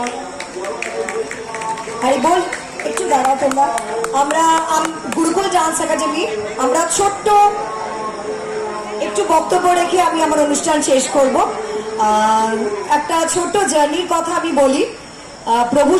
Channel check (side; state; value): both; identical; correlation 1.00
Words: হরি বল। একটু দাঁড়াও তোমরা। আমরা গুরুকুল ডান্স একাডেমি আমরা ছোট্ট একটু বক্তব্য রেখে আমি আমার অনুষ্ঠান শেষ করব। একটা ছোট্ট জার্নির কথা আমি বলি।